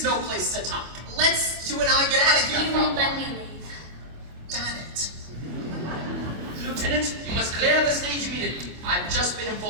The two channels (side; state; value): left; late; 25 ms